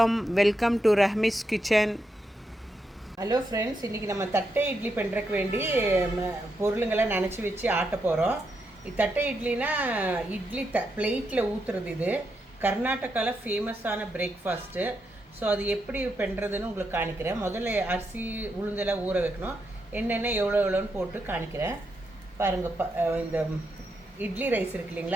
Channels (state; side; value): normal; both; correlation 0.83